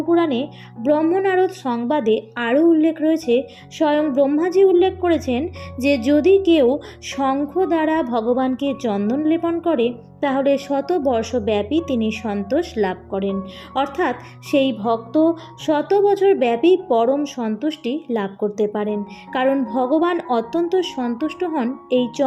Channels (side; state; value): both; identical; correlation 1.00